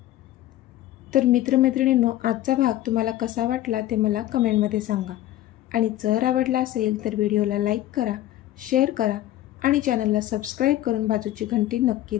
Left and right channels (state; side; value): quieter; right; 14.0 dB